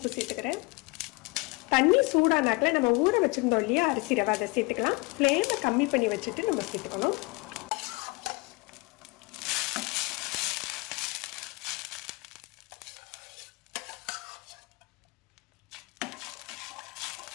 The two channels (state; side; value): quieter; right; 26.1 dB